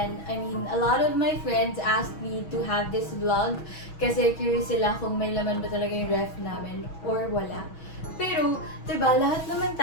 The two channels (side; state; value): right; late; 6.2 ms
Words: I mean, a lot of my friends asked me to have this vlog kasi curious sila kung may laman ba talaga yung ref namin or wala. Pero, diba, lahat naman